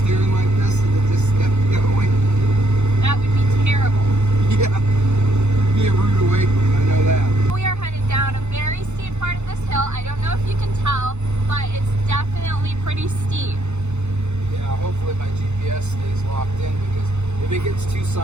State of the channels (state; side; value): late; left; 0.82 ms